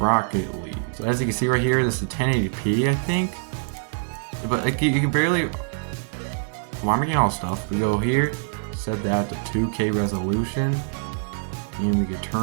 League. So as you can see right here, this is 1080p, I think. But like, you can barely... Well, I'm getting all stuff. We go here, set that to 2K resolution, and we can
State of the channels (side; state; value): left; silent; digital silence